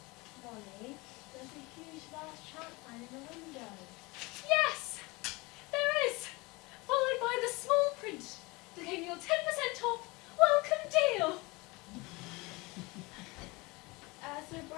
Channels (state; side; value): quieter; right; 24.6 dB